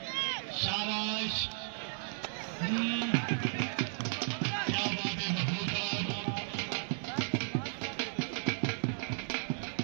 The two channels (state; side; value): silent; left; 55 dB below the other